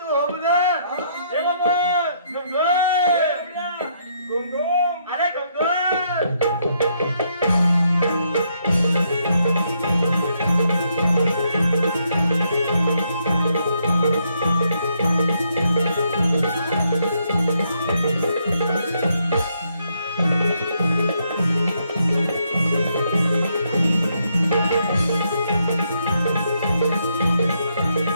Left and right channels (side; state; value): both; inverted; correlation -0.74